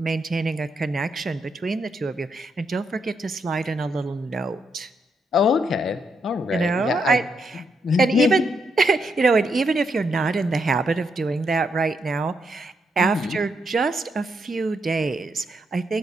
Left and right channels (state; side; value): normal; both; correlation 0.79